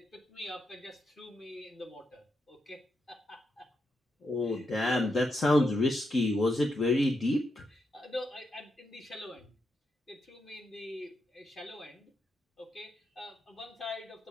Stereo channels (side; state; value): both; normal; correlation 0.83